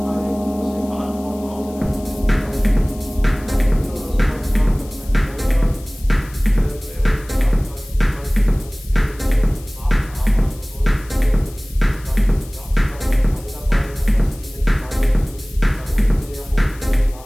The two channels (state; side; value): noise; left; hiss, 22 dB below the sound